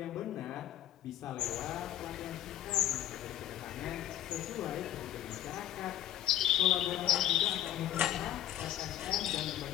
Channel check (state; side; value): quieter; right; 12.2 dB